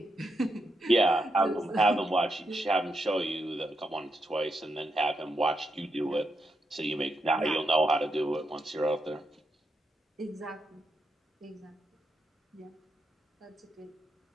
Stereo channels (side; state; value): both; normal; correlation 0.83